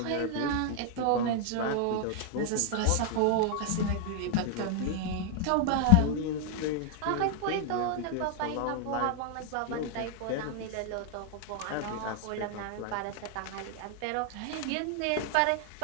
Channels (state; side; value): different; both; correlation 0.00